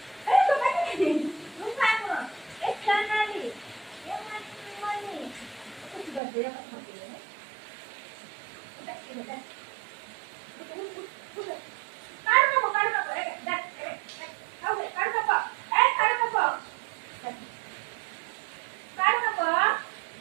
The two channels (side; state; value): left; drops out; at 6.2 s